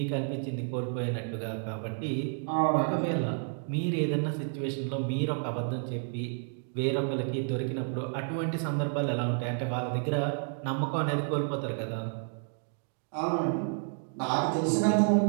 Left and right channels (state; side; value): silent; left; 57 dB below the other